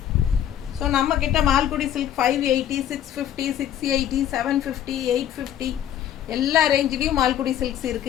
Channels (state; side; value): quieter; right; 10.6 dB